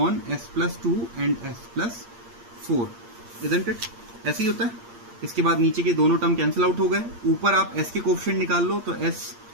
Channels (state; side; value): late; left; 8.6 ms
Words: s plus 2 and s plus 4, isn't it? ऐसे ही होता है। इसके बाद नीचे के दोनों टर्म कैंसिल आउट हो गए। ऊपर आप s के कोफिशिएंट निकाल लो, तो s